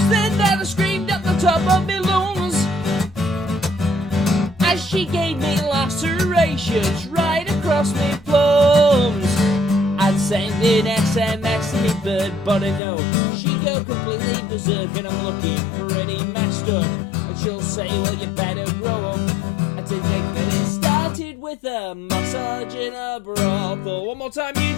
then that I screamed at the top of my lungs as she gave me lacerations right across my plums. I'd send an SMS to me bird, but I know she'd go completely berserk, and I'm looking pretty messed up. And she'll say, well, you better grow up. And to think that it started with a massage in a brothel. One more time,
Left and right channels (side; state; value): right; drops out; at 12.8 s